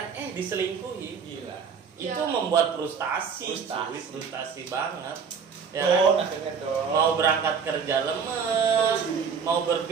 diselingkuhi. Gila. Itu Ya. membuat frustasi, Frustasi. frustasi banget. Ya Dong, kan? akhirnya dong. Mau berangkat kerja lemes, mau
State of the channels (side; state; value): left; quieter; 6.2 dB